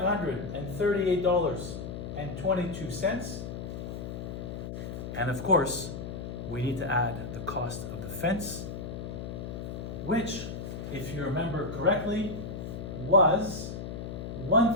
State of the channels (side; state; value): left; noise; hum, 7 dB below the sound